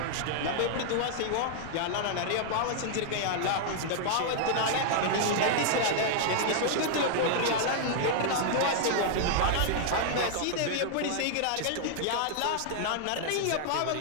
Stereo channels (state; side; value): different; both; correlation -0.01